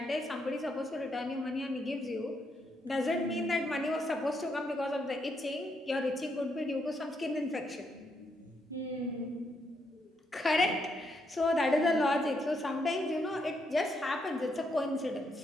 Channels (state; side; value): normal; both; correlation 0.78